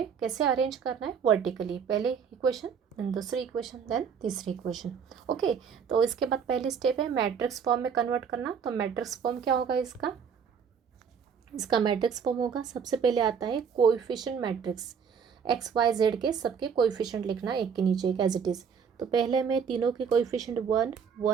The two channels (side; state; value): left; quieter; 6.7 dB